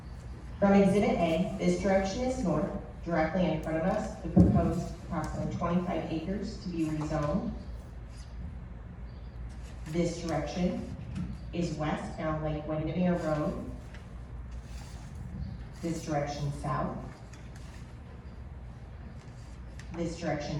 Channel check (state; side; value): identical; both; correlation 1.00